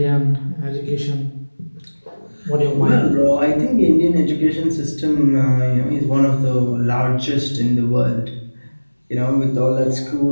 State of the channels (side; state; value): both; inverted; correlation -1.00